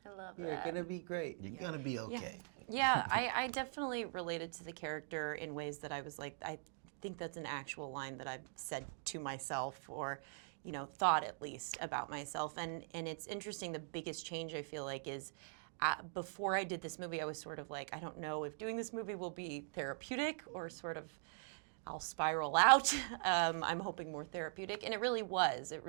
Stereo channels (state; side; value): silent; left; digital silence